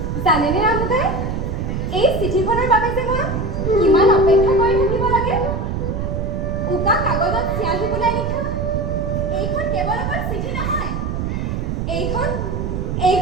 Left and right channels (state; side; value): noise; right; rumble, 2 dB below the sound